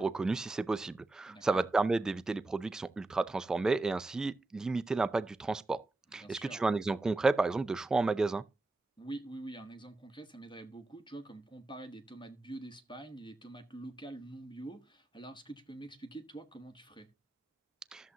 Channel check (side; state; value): left; quieter; 3.1 dB